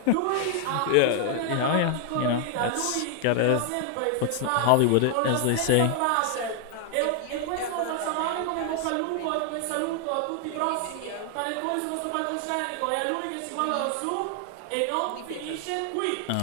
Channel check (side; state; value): both; different; correlation 0.00